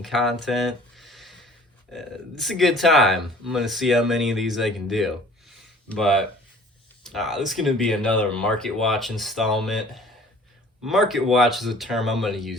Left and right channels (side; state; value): both; normal; correlation 0.50